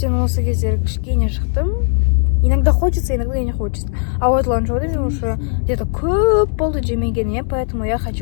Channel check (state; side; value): silent; right; 68 dB below the other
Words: осы кездері кішкене шықтым. Иногда хочется, иногда не хочется. А вот Ланчжоуды мен уже где-то көп болды жемегеніме, поэтому я